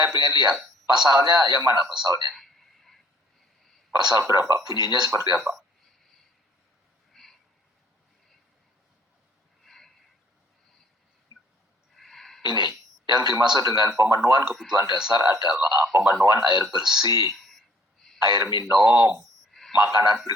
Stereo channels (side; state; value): both; normal; correlation 0.59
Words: pengen lihat. Pasalnya yang mana pasalnya? Pasal berapa? Bunyinya seperti apa? Ini, yang dimaksud dengan pemenuhan kebutuhan dasar adalah pemenuhan air bersih, air minum, makanan